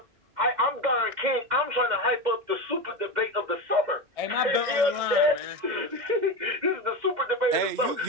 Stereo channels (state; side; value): late; left; 2.0 ms